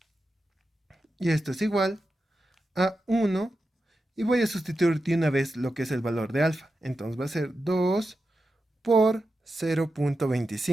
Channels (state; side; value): normal; both; correlation 0.90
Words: Y esto es igual a 1, y voy a sustituir de una vez lo que es el valor de alfa. Entonces va a ser 2 por